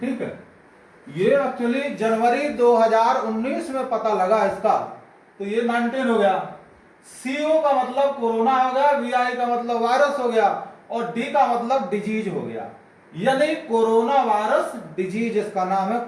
है, ये एक्चुअली जनवरी 2019 में पता लगा इसका, तो ये 19 हो गया। CO का मतलब कोरोना हो गया, VI का मतलब वायरस हो गया और D का मतलब डिजीज हो गया, यानी कोरोना वायरस डिजीज, इसका नाम है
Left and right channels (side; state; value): both; identical; correlation 1.00